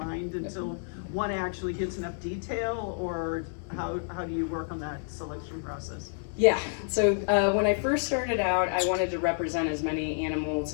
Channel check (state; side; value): silent; right; 58 dB below the other